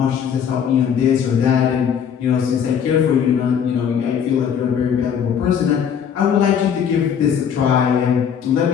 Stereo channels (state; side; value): quieter; right; 7.9 dB